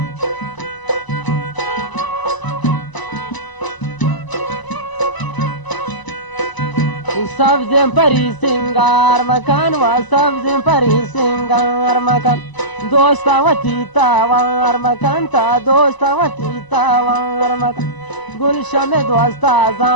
سبز پری سنگار مکان و سبز پری سنگار مکان دوستا و تیتا وار مکان تا دوستا و تیتا وار مکان گلشم دوستا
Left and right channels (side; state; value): right; late; 1.0 ms